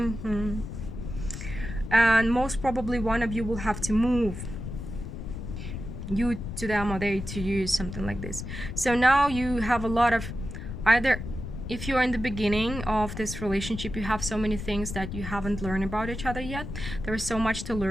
And most probably one of you will have to move, you to them or they to you, something like this. So now you have a lot of, either if you're in the beginning of this relationship, you have so many things that you haven't learned about each other yet. There is so much to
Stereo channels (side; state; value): left; noise; rumble, 8 dB below the sound